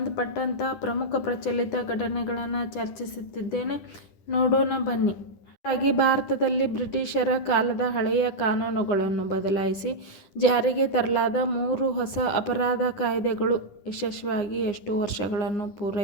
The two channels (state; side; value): late; right; 10 ms